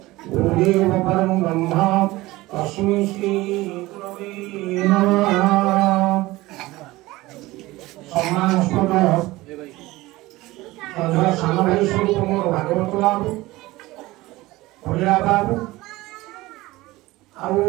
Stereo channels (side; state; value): left; quieter; 19.2 dB